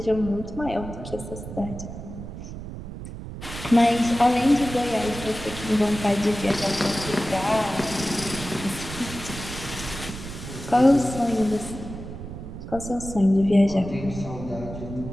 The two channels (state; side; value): noise; right; rumble, 10 dB below the sound